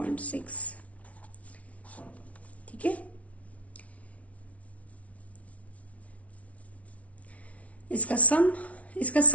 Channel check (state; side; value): late; right; 0.066 ms